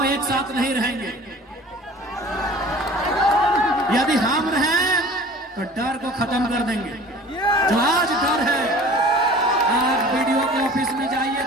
एक साथ नहीं रहेंगे। यदि हम रहें तो डर को खत्म कर देंगे। जो आज डर है, आज वीडियो के ऑफिस में जाइए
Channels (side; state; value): both; normal; correlation 0.44